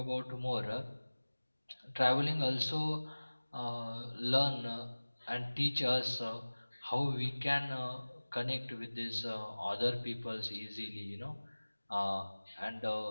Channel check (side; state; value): both; inverted; correlation -1.00